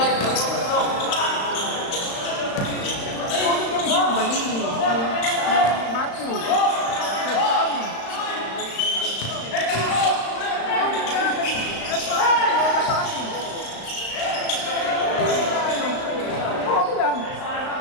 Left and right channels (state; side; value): late; right; 35 ms